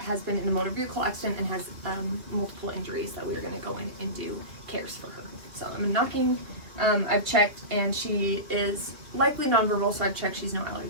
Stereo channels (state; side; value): late; left; 2.5 ms